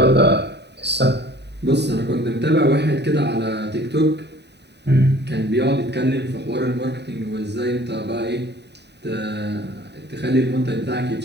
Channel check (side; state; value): left; late; 0.50 ms